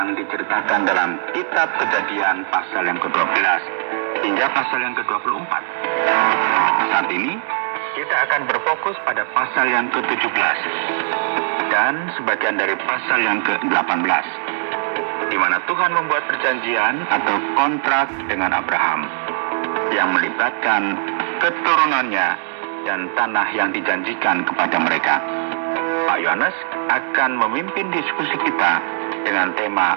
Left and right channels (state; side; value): silent; left; digital silence